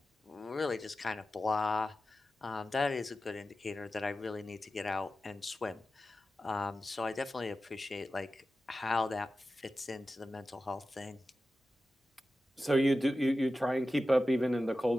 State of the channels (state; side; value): normal; both; correlation 0.93